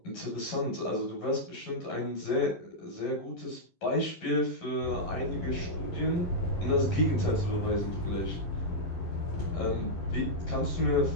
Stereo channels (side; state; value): right; late; 11 ms